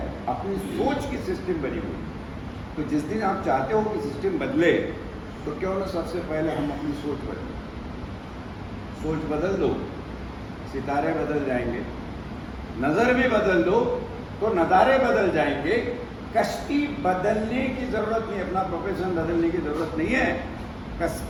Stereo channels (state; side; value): identical; both; correlation 1.00